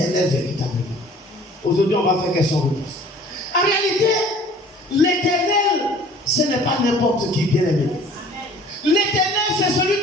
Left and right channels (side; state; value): both; normal; correlation 0.50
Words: véritablement? Aujourd'hui, on va faire question-réponse. En réalité, l'Éternel, ce n'est pas n'importe qui, bien aimé. L'Éternel, c'est